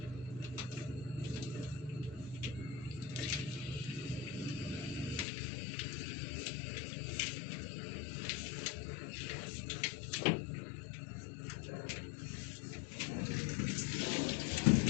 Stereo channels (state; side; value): drops out; right; at 5.2 s